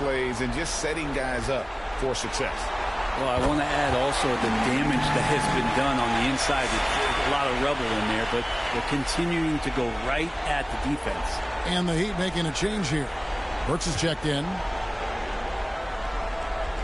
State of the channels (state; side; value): identical; both; correlation 1.00